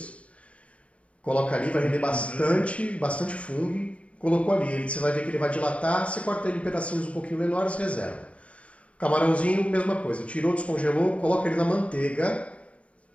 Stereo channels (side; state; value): right; late; 0.064 ms